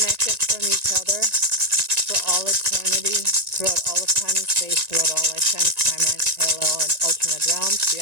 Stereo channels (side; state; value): left; late; 1.9 ms